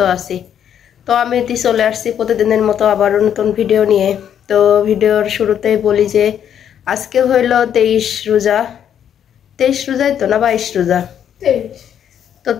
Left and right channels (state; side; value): quieter; right; 9.3 dB